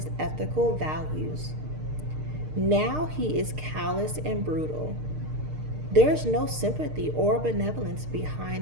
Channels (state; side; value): late; left; 6.6 ms